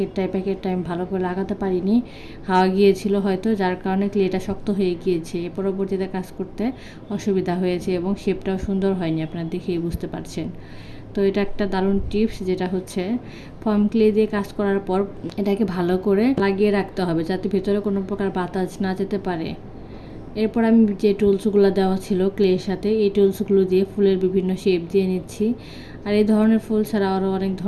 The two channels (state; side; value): identical; both; correlation 1.00